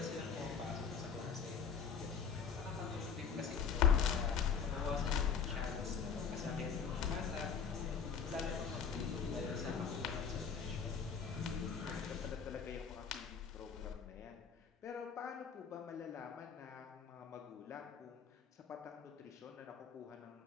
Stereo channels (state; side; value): quieter; right; 6.6 dB